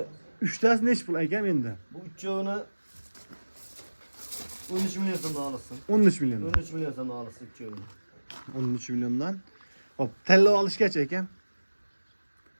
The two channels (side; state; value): both; inverted; correlation -1.00